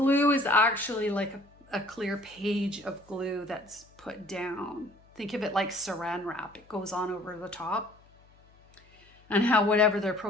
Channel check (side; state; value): left; noise; hum, 29 dB below the sound